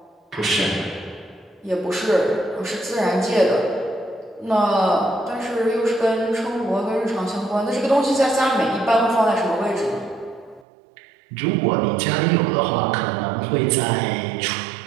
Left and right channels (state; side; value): drops out; left; at 10.7 s